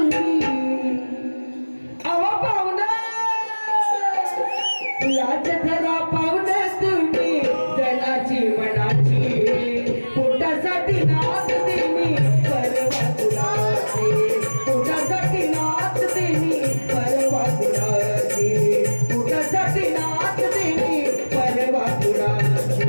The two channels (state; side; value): inverted; both; correlation -1.00